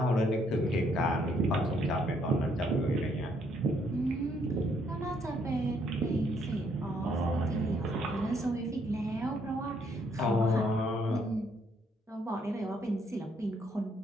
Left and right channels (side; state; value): both; normal; correlation 0.70